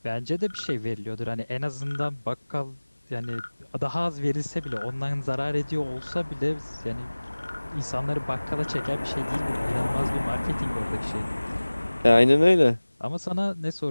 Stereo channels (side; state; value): both; inverted; correlation -1.00